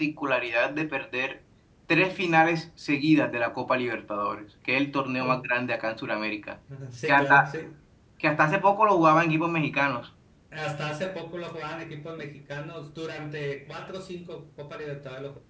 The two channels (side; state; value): both; identical; correlation 1.00